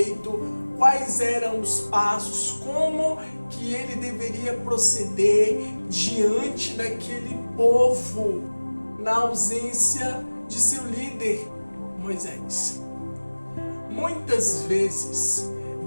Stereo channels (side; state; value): both; inverted; correlation -1.00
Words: quais eram os passos, como que ele deveria proceder diante daquele povo na ausência de seu líder, Moisés. Muitas vezes,